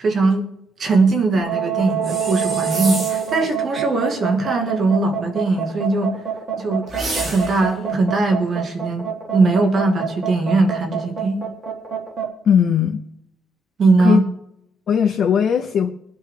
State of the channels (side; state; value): both; normal; correlation 0.74